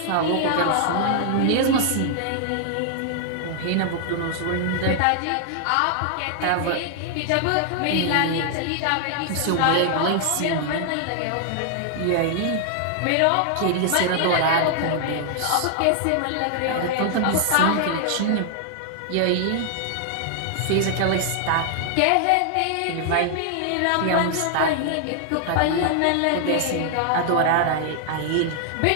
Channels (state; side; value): different; both; correlation 0.00